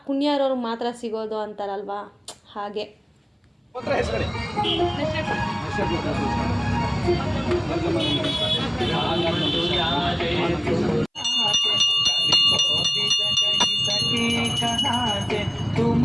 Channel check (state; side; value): identical; both; correlation 1.00